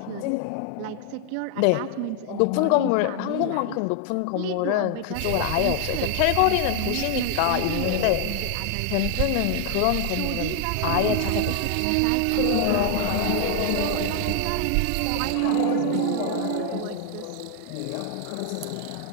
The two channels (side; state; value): both; different; correlation 0.00